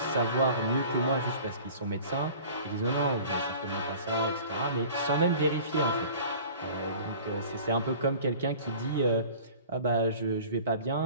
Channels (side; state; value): both; inverted; correlation -0.44